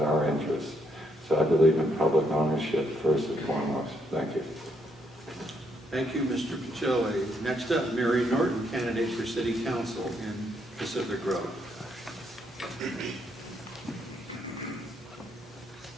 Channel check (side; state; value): both; normal; correlation 0.74